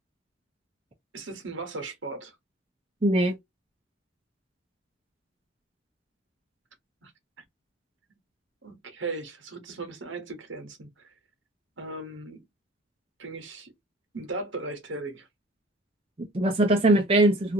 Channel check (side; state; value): both; normal; correlation 0.47